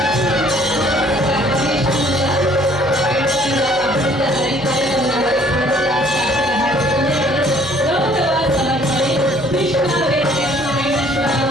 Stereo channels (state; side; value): noise; left; hum, 18 dB below the sound